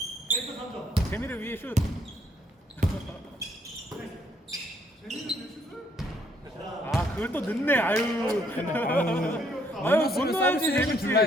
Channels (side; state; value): both; normal; correlation 0.68